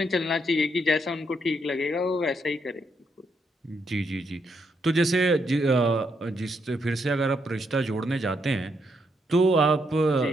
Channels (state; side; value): normal; both; correlation 0.77